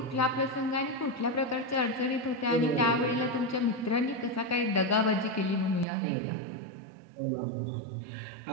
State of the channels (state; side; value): drops out; left; at 5.9 s